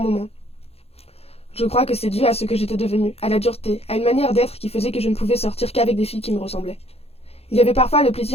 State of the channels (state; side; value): late; right; 0.29 ms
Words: moments. Je crois que c'est dû à ce que j'étais devenue, à la dureté, à une manière d'être qui faisait que je ne pouvais sortir qu'avec des filles qui me ressemblaient. Il y avait parfois le